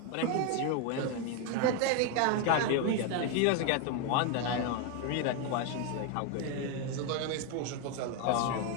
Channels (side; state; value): both; different; correlation 0.01